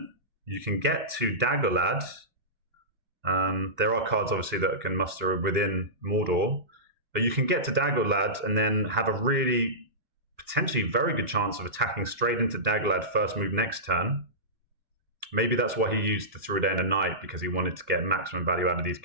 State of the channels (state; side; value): late; left; 2.4 ms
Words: you can get to Daggerlad. There are cards, obviously, that can muster within Mordor, but you can get to Daggerlad and then have a really potentially very good chance of attacking straight into Daggerlad first move next turn. Maybe that's why he used the Through a Day and a Night, because he wanted to get maximum value out of these